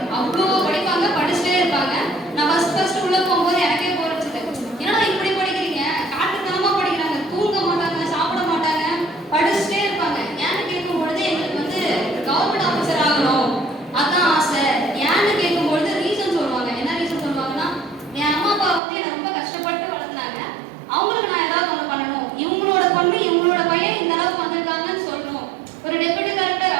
அவ்வளோ படிப்பாங்க, படிச்சுட்டே இருப்பாங்க. நான் ஃபர்ஸ்ட் உள்ள போகும்போது எனக்கே போர் அடிச்சது. ஏன்னா இப்படி படிக்கிறீங்க, காட்டுத்தனமா படிக்கிறாங்க, தூங்க மாட்டாங்க, சாப்பிட மாட்டாங்க, படிச்சுட்டே இருப்பாங்க. ஏன்னு கேட்கும் பொழுது எங்களுக்கு வந்து கவர்மெண்ட் ஆஃபீஸர் ஆகணும் அதான் ஆசை. ஏன்னு கேட்கும் பொழுது ரீசன் சொல்லுவாங்க. என்ன ரீசன் சொல்லுவாங்கன்னா, என் அம்மா அப்பா வந்து என்னை ரொம்ப கஷ்டப்பட்டு வளர்த்துனாங்க, அவங்களுக்கு நான் ஏதாவது ஒன்று பண்ணணும், இவங்களோட பொண்ணு இவங்களோட பையன் இந்த அளவுக்கு வந்திருக்காங்கன்னு சொல்லணும். ஒரு டெப்யூட்டி கலெக்டர்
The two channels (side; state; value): left; drops out; at 18.8 s